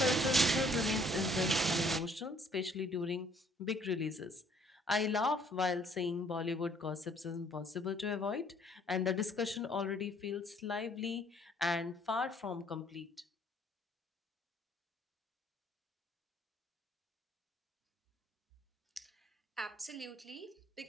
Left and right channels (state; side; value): normal; both; correlation 0.61